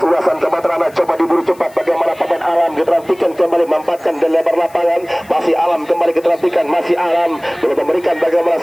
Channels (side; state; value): left; noise; hiss, 26 dB below the sound